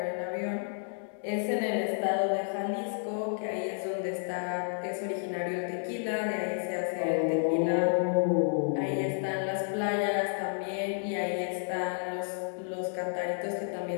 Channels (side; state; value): right; silent; 57 dB below the other